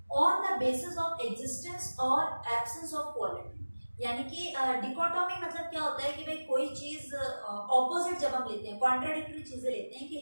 on the basis of existence और एब्सेंस ऑफ क्वालिटी, यानी कि डिकोटोमी मतलब क्या होता है कि भाई कोई चीज ऑपोजिट जब हम लेते हैं, कॉन्ट्राडिक्टरी चीजें लेते हैं कि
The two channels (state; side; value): inverted; both; correlation -1.00